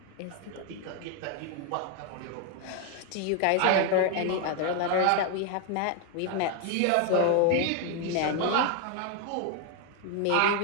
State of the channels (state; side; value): different; both; correlation 0.01